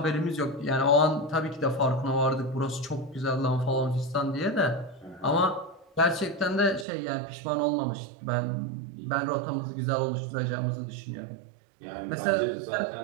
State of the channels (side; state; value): left; drops out; at 6.9 s